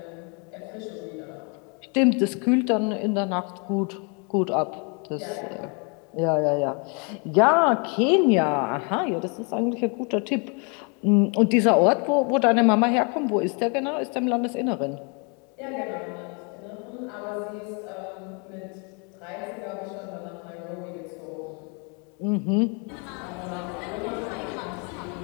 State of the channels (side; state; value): right; quieter; 34.6 dB